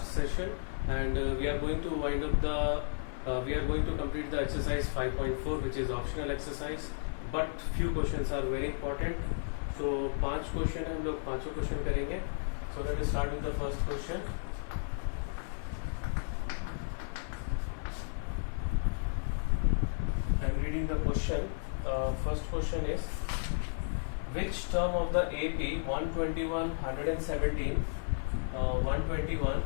session, and we are going to wind up we are going to complete the exercise 5.4, which is optional exercise, but few questions are very important. So 5 question है, हम लोग 5 क्वेश्चन करेंगे. So let us start with the first question. I'm reading the question. First question is, which term of the AP 121, 117, 121,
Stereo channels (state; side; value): silent; right; 56 dB below the other